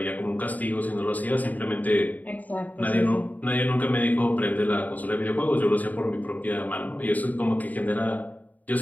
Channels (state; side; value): late; right; 0.078 ms